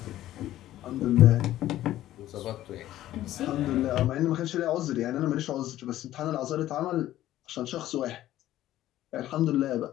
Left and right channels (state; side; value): quieter; right; 13.9 dB